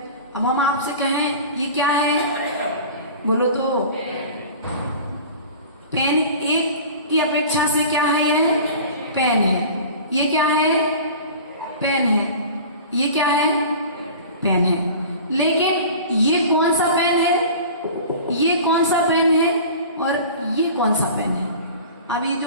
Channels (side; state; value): both; inverted; correlation -0.39